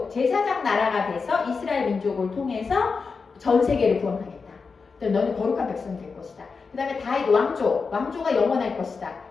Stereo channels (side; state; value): right; quieter; 4.9 dB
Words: 제사장 나라가 돼서 이스라엘 민족을 통해서 전 세계를 구원하겠다. 너는 거룩한 백성이 될 것이다. 그 다음에 다윗 왕조가 영원할 것이다.